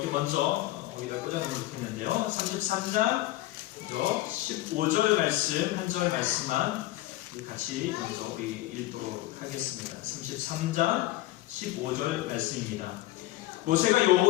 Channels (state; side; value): quieter; right; 16.7 dB